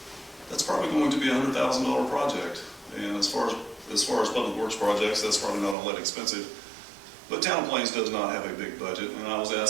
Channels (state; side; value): drops out; left; at 5.8 s